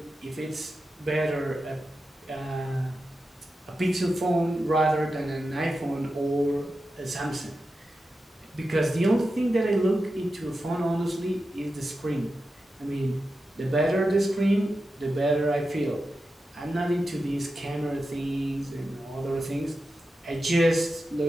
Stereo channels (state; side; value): normal; both; correlation 0.91